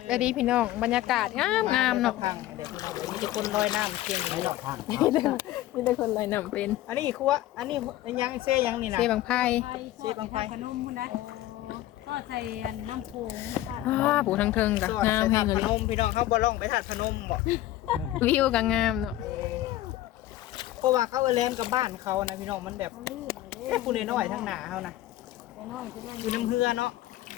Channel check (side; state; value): right; quieter; 14.8 dB